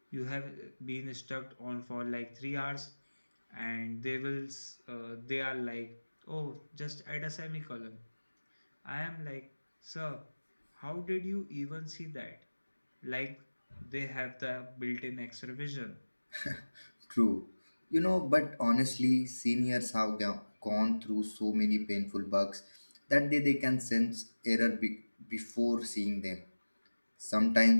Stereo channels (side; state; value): both; inverted; correlation -1.00